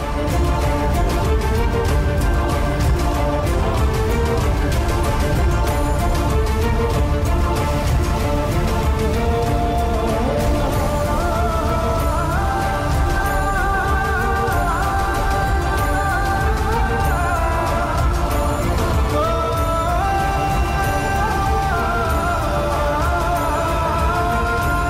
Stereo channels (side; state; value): both; identical; correlation 1.00